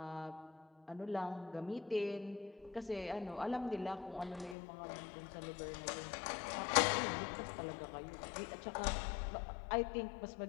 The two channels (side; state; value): right; drops out; at 4.5 s